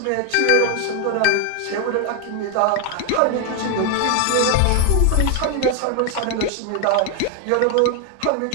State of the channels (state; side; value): different; both; correlation 0.01